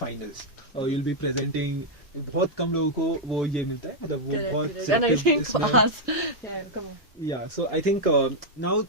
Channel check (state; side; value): normal; both; correlation -0.03